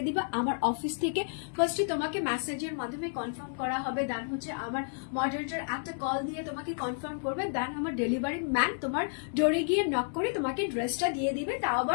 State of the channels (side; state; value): right; silent; 57 dB below the other